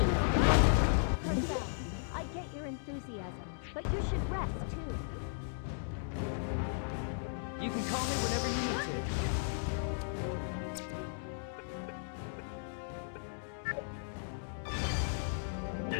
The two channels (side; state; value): right; silent; digital silence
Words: Crystal, I get your enthusiasm, but you should rest too. You can call me whenever you need to.